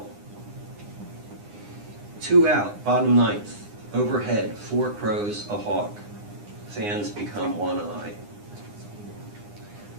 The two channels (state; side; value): late; left; 9.8 ms